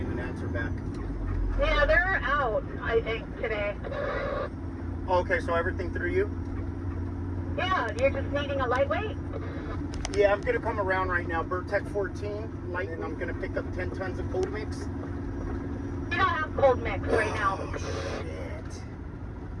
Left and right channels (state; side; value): identical; both; correlation 1.00